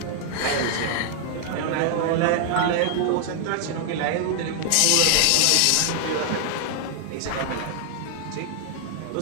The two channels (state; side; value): different; both; correlation 0.00